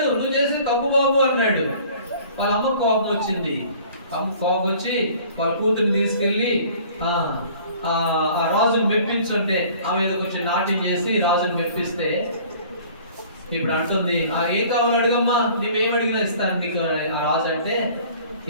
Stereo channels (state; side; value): inverted; both; correlation -0.50